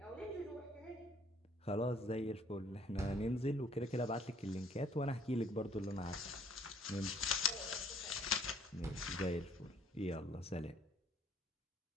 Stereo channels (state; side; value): normal; both; correlation 0.61